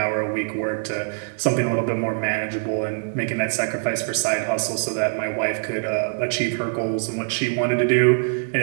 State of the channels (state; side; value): silent; left; 63 dB below the other